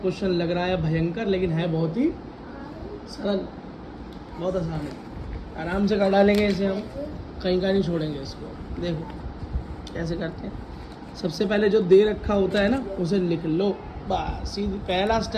लग रहा है भयंकर, लेकिन है बहुत ही सरल, बहुत आसान है। आराम से कर डालेंगे इसे, हम कहीं का नहीं छोड़ेंगे इसको। देखो कैसे करते हैं। सबसे पहले जो दे रखा होता है ना उसे लिख लो, बस सीधी पहला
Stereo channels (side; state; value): both; identical; correlation 1.00